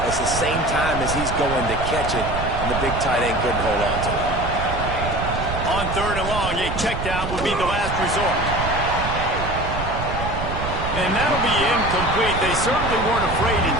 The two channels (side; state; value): right; noise; rumble, 6 dB below the sound